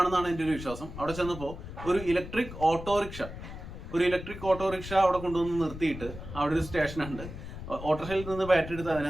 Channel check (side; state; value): left; noise; rumble, 11 dB below the sound